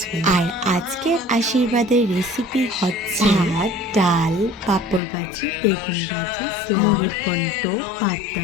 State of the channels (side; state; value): right; drops out; at 5.0 s